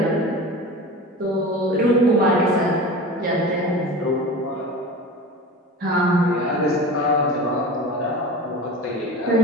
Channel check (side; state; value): both; normal; correlation 0.32